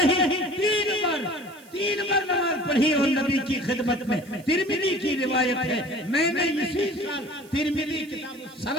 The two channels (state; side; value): noise; right; hiss, 25 dB below the sound